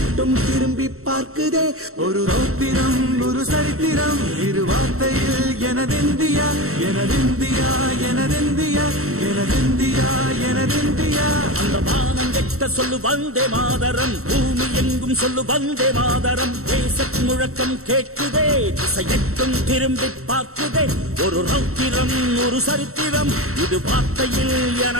திரும்பி பார்க்குதே. ஒரு ரௌத்திரம் ஒரு சரித்திரம் இரு வார்த்தையில் எனதிந்தியா எனதிந்தியா எனதிந்தியா எனதிந்தியா எனதிந்தியா. அந்த வானம் எட்ட சொல்லு வந்தே மாதரம், பூமி எங்கும் சொல்லு வந்தே மாதரம். தேசத்தின் முழக்கம் கேட்குதே, திசை எட்டும் திரும்பி பார்க்குதே. ஒரு ரௌத்திரம் ஒரு சரித்திரம் இது வார்த்தையில்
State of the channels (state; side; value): late; left; 0.63 ms